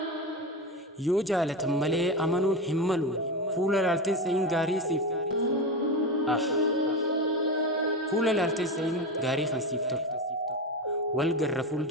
Yoo jaalatan malee amanuun hin malu fuula laalteen sa'iin gaarii siif fuula laalteen sa'iin gaarii kan siif tolu. Wal garra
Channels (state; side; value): normal; both; correlation 0.19